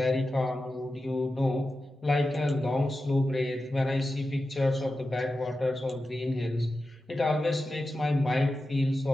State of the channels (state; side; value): normal; both; correlation 0.92